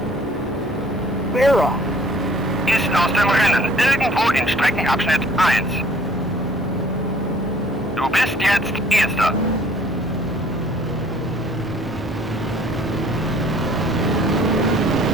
Vera. Ist aus dem Rennen, irgendwo in Streckenabschnitt 1. Du bist jetzt Erster.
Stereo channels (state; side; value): normal; both; correlation 0.57